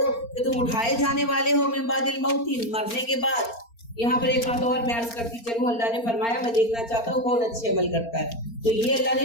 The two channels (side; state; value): right; late; 4.3 ms